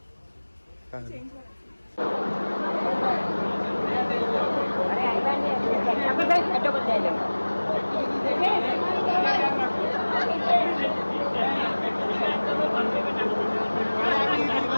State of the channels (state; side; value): inverted; both; correlation -1.00